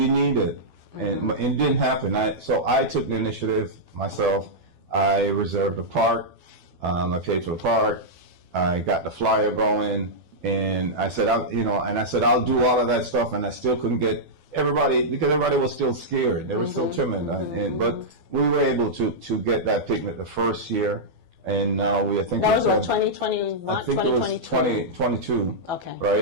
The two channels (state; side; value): late; left; 12 ms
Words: need it. And it didn't happen. So I took the initiative myself. I reserved a park. I paid for the park. I got the flyer going. And I said, I'll do all of that stuff. And I still couldn't get everybody, because everybody was still scared. They were still timid. But we were able to get that picnic the first year. And now I think that was 2021, I think 2022. It was 2022. Okay.